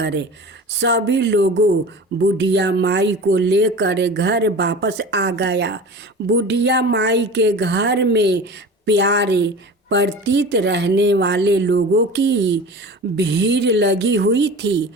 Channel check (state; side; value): normal; both; correlation 0.36